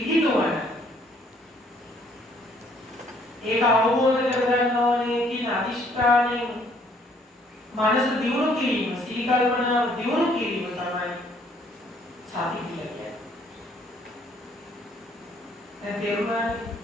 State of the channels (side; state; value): both; normal; correlation 0.63